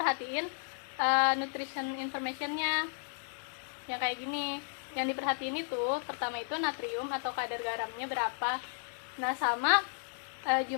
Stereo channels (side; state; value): right; silent; 55 dB below the other